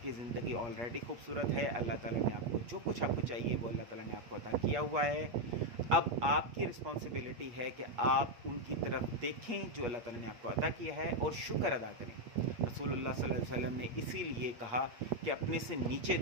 کی زندگی آلریڈی خوبصورت ہے. اللہ تعالیٰ نے آپ کو جو کچھ آپ کو چاہیے وہ اللہ تعالیٰ نے آپ کو عطا کیا ہوا ہے. اب آپ کی رسپانسبلٹی ہے کہ آپ ان کی طرف دیکھیں جو اللہ تعالیٰ نے آپ کو عطا کیا ہے اور شکر ادا کریں. رسول اللہ صلی اللہ علیہ وسلم نے اسی لیے کہا کہ اپنے سے نیچے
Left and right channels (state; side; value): late; left; 8.5 ms